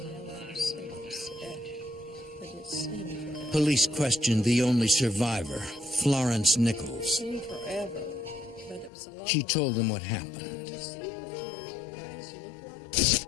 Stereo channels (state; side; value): drops out; right; at 8.9 s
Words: Police questioned the only survivor, Florence Nichols. She told them what happened.